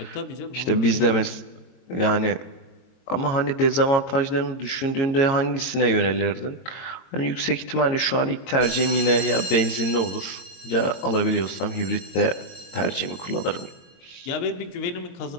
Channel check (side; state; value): right; late; 22 ms